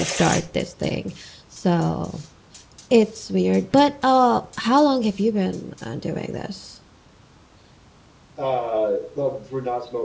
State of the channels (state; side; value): identical; both; correlation 1.00